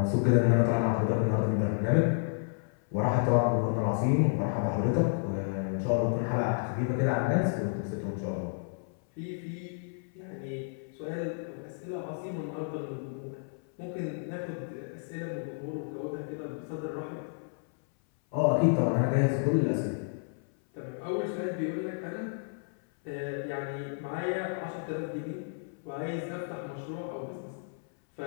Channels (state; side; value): silent; right; 57 dB below the other